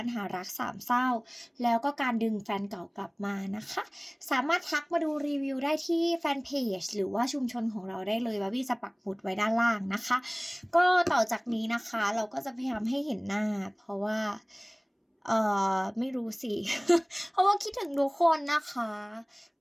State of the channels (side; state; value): both; identical; correlation 1.00